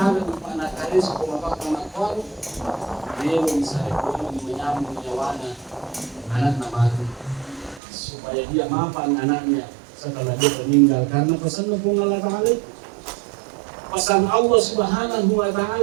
pada karis otomatis dia bisa menyambung nyawana anak nama supaya dia maafkan anaknya setelah dia meninggal karena pesan Allah Ta'ala pesan Allah Subhanahu wa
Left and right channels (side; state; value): left; drops out; at 7.8 s